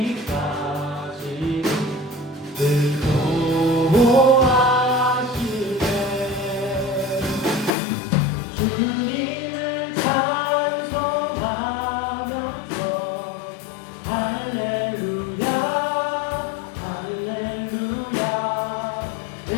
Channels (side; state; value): right; drops out; at 7.8 s